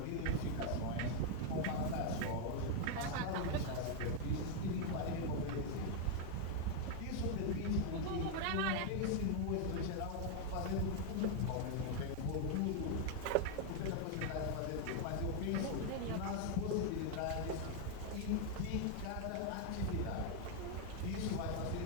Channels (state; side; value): different; both; correlation 0.00